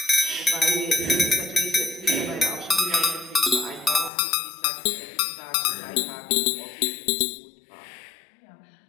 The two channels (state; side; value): drops out; right; at 4.1 s